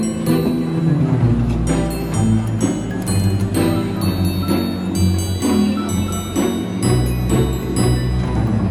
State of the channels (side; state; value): both; identical; correlation 1.00